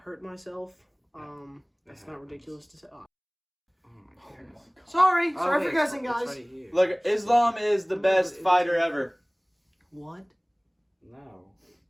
myself. That's not ridiculous to say. Oh. Oh my goodness. Sorry Oh, for wait, guessing, it's guys. right here. Look, Islam is the best fighter ever. What? No.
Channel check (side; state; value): both; identical; correlation 1.00